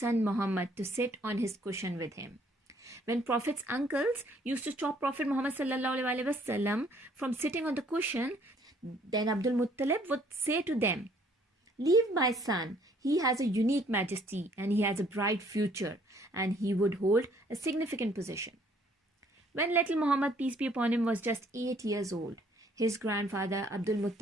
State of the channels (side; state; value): both; normal; correlation 0.62